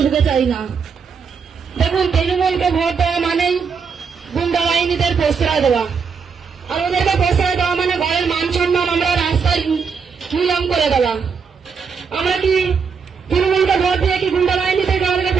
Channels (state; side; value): quieter; left; 5.9 dB